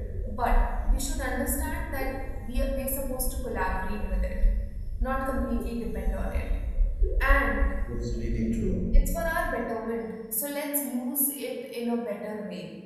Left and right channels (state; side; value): identical; both; correlation 1.00